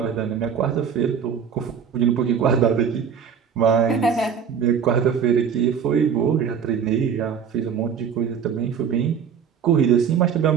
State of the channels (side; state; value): left; quieter; 7.3 dB